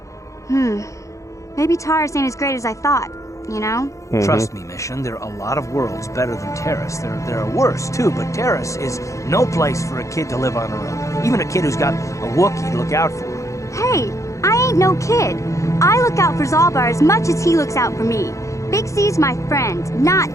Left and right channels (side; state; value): right; late; 0.15 ms